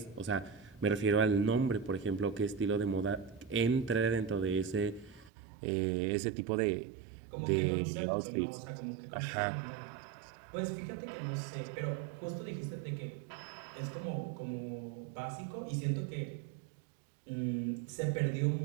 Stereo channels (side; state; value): left; drops out; at 5.3 s